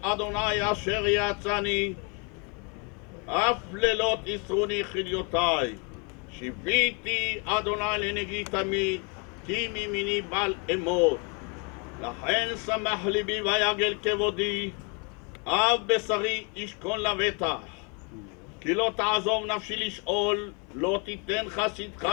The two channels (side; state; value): right; quieter; 34.4 dB